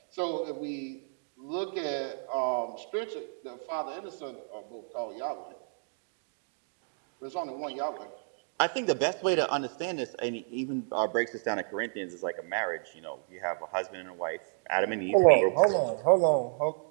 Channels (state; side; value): silent; left; digital silence